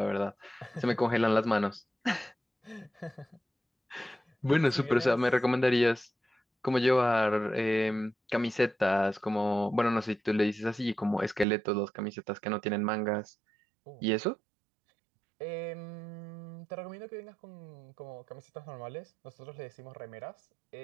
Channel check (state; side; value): drops out; left; at 11.5 s